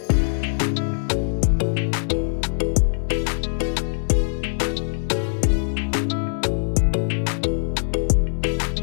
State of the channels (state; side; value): silent; right; 64 dB below the other